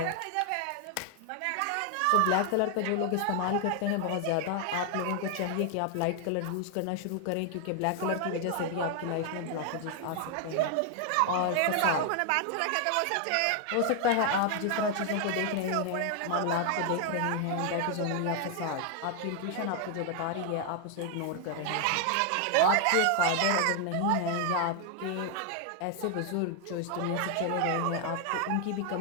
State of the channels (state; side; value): different; both; correlation 0.00